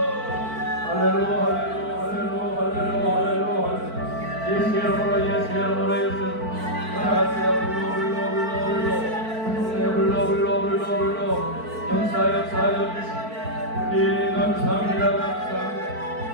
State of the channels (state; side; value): late; left; 4.5 ms